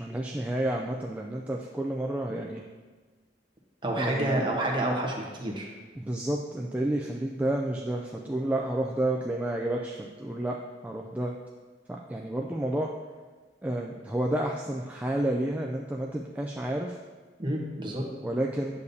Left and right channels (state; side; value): normal; both; correlation 0.74